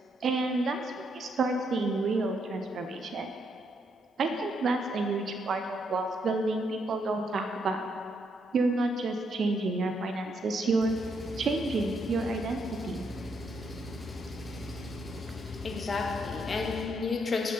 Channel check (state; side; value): normal; both; correlation 0.76